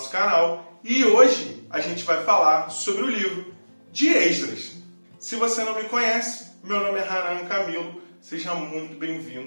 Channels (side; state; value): both; inverted; correlation -1.00